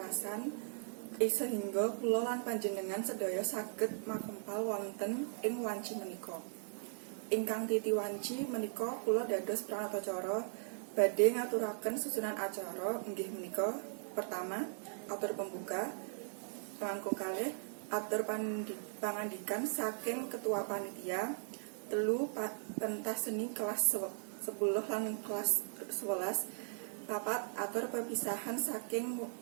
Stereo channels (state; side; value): silent; left; digital silence